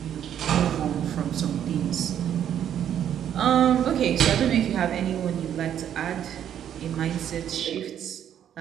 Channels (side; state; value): left; quieter; 9.8 dB